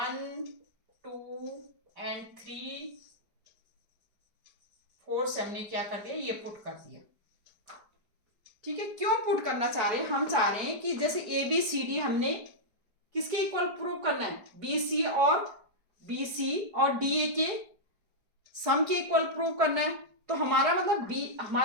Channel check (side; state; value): left; late; 4.8 ms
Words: 2 एंड 3, 4 से हमने क्या कर दिया? ये पुट कर दिया। ठीक है, क्यों पुट करना चाह रहे हैं? हम चाह रहे हैं कि जैसे ABCD हमने किसके इक्वल प्रूव करना है? BC और DA के सम के इक्वल प्रूव करना है। तो हमारा मतलब